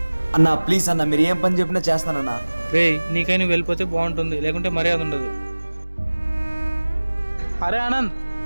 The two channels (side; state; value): both; inverted; correlation -1.00